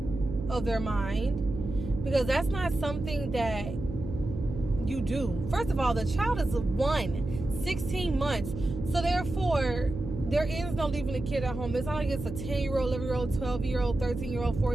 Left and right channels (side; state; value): right; noise; hum, 8 dB below the sound